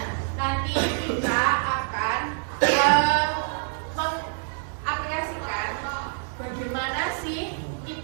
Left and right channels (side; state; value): left; silent; 61 dB below the other